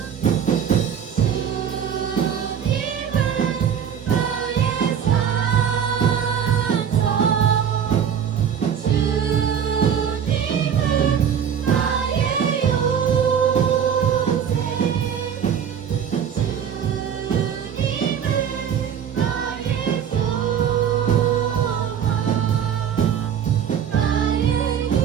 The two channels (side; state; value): left; quieter; 8.3 dB